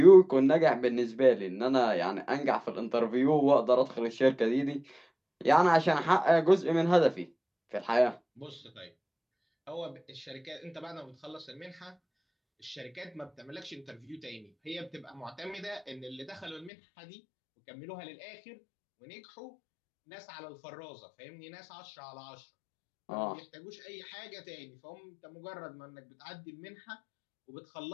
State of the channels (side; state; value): right; drops out; at 16.7 s